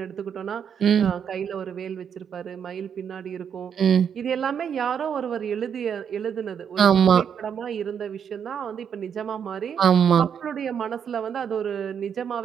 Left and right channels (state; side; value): quieter; left; 7.8 dB